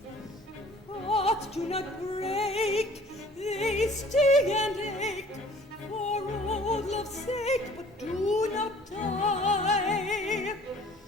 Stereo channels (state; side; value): normal; both; correlation 0.52